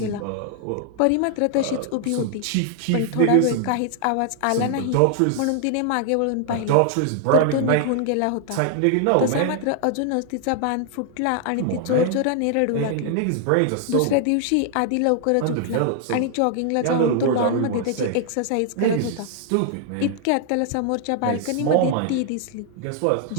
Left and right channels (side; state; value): both; different; correlation 0.00